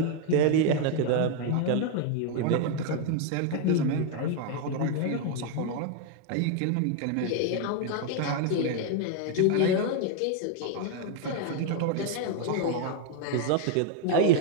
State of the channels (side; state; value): both; different; correlation 0.00